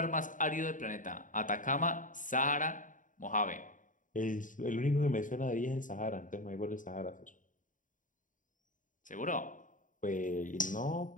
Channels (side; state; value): right; late; 0.38 ms